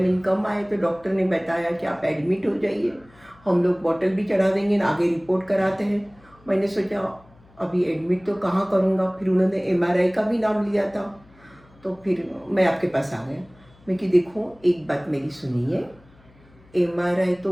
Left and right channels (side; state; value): left; noise; hum, 28 dB below the sound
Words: कम आए, तो डॉक्टर ने बताया कि आप एडमिट हो जाइए, हम लोग बॉटल भी चढ़ा देंगे, आगे रिपोर्ट कराते हैं। मैंने सोचा अभी एडमिट तो कहाँ करूँगा, फिर उन्होंने एमआरआई का भी नाम लिया था। तो फिर मैं आपके पास आ गया। मैं कि देखो एक बात मेरी सुनिए, एमआरआई